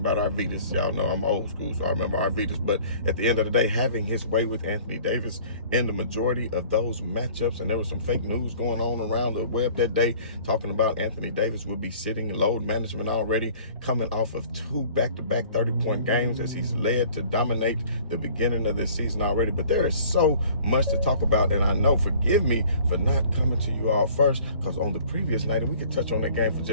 about Arvydas. Y'all know I'm old school, so I remember Arvydas. But at the end of the day, having his way with Anthony Davis in the majority of those matchups, and there was some fake news going on around the web that day talking about Anthony Davis would be sitting load management already, coming off of 2 back-to-back 30-point games as he's led to dominate the beginning of this season already. But there is so much to talk about, and I know, forgive me for not coming to you all first, because on the previous night, and we could touch on that game for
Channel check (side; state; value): both; inverted; correlation -0.50